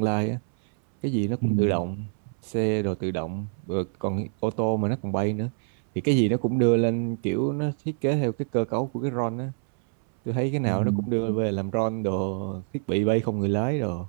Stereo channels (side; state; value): left; silent; 61 dB below the other